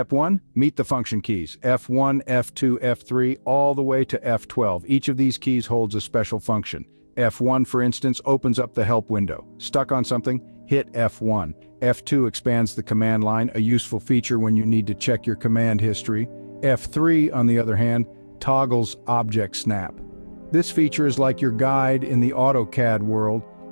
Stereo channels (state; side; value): inverted; both; correlation -1.00